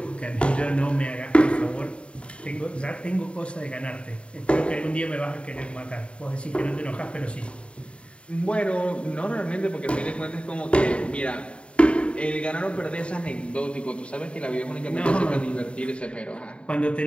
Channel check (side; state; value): right; late; 0.058 ms